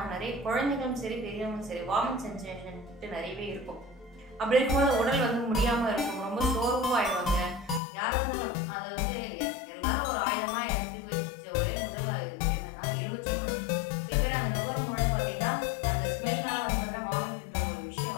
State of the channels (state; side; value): drops out; right; at 7.8 s